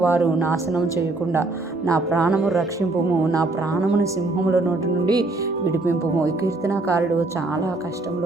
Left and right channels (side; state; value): left; quieter; 3.1 dB